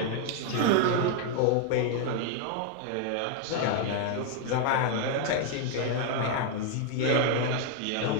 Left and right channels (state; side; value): different; both; correlation 0.00